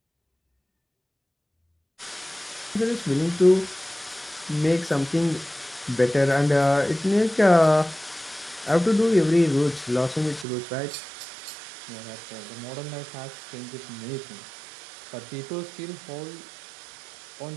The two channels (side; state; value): left; drops out; at 10.5 s